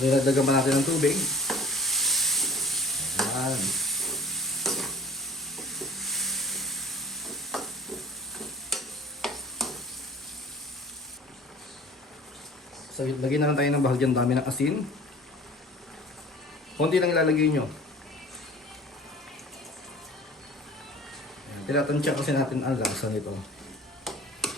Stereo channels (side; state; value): both; normal; correlation 0.47